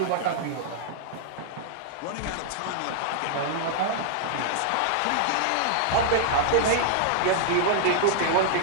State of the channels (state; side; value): different; both; correlation -0.01